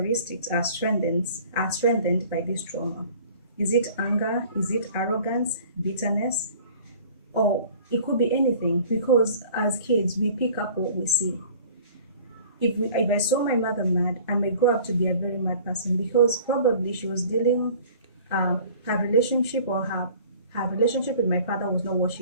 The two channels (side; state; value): both; inverted; correlation -0.48